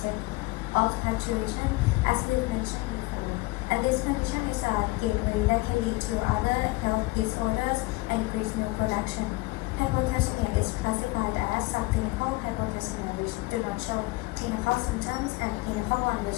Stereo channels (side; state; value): right; quieter; 21.9 dB